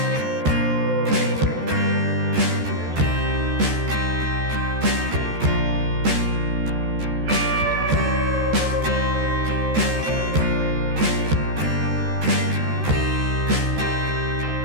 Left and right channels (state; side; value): late; left; 13 ms